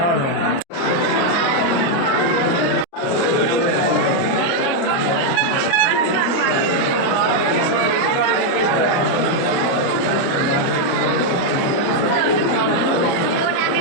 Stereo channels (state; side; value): late; right; 29 ms